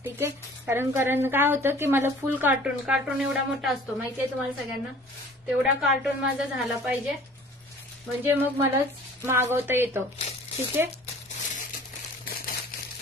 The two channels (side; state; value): both; normal; correlation 0.49